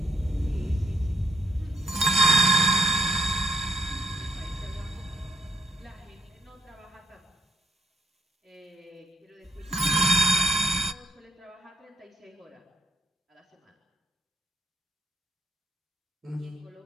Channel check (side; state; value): both; normal; correlation 0.71